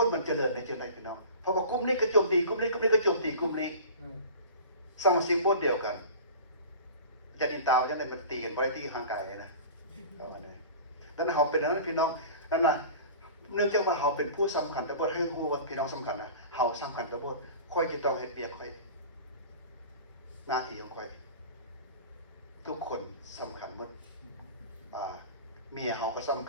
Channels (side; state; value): both; inverted; correlation -0.38